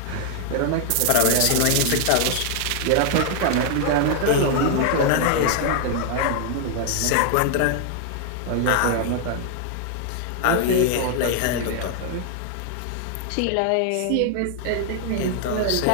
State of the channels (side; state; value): both; different; correlation 0.00